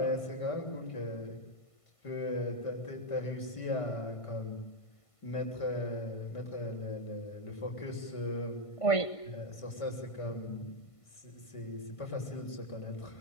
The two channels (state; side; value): late; right; 1.5 ms